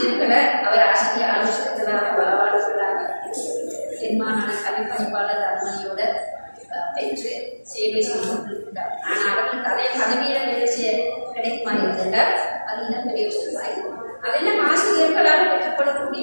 அவர் ஆசிரியர் ஆலோசகர்களாக பலவாளர்களாக தென்மாகாண கல்வி பணிப்பாளர் அனுமதியோட பெற்று சேவை செய்து கொண்டிருக்கிறார். ஆனால் அவர்களுக்கு அதே பதவியில வேலை செய்ய கிடைக்குமா இருந்தால் அது இன்னும் பெரிய விஷயமாய். அதெல்லாம் ஆசிரியர்களால்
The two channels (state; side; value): inverted; both; correlation -1.00